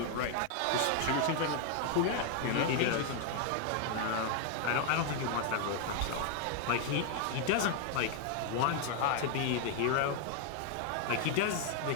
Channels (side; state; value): both; different; correlation 0.00